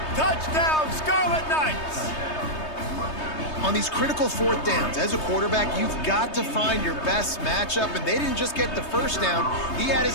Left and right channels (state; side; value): late; right; 3.2 ms